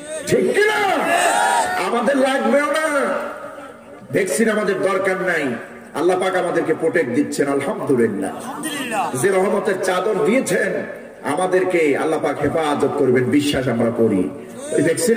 ঠিক কিনা? আমাদের লাগবেও না, ভ্যাকসিন আমাদের দরকার নাই। আল্লাহ পাক আমাদেরকে প্রোটেক্ট দিচ্ছেন, আলহামদুলিল্লাহ। যে রহমতের চাদর দিয়েছেন আমাদেরকে, আল্লাহ পাক হেফাজত করবেন, বিশ্বাস আমরা করি। এই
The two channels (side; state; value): both; identical; correlation 1.00